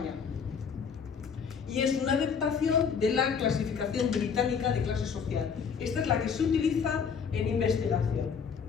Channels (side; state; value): right; quieter; 6.4 dB